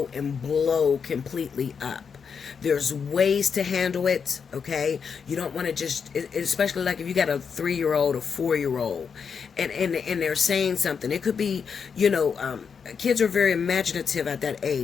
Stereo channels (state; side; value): quieter; right; 6.3 dB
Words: and blow completely up. There's ways to handle it, okay? You don't want to just, especially like if you got a 3-year-old or 4-year-old and they're saying something. It could be, you know, kids are very imaginative at that